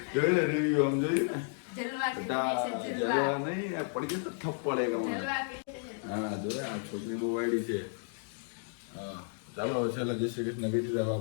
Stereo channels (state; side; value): silent; right; 56 dB below the other